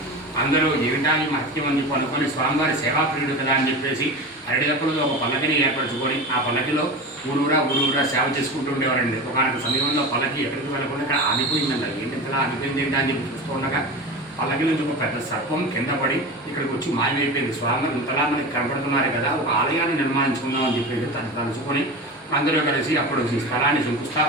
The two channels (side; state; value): both; normal; correlation 0.28